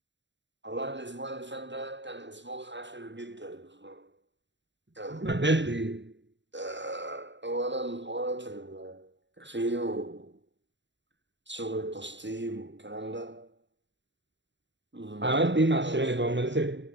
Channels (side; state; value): left; late; 0.53 ms